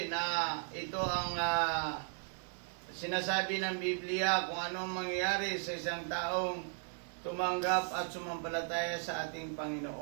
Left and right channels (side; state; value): left; silent; 54 dB below the other